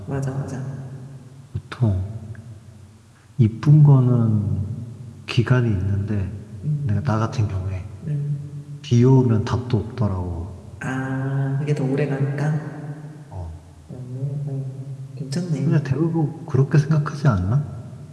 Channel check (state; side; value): identical; both; correlation 1.00